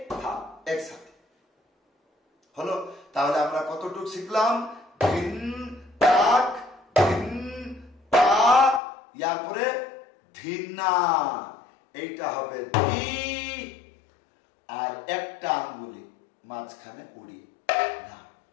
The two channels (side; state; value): right; drops out; at 8.8 s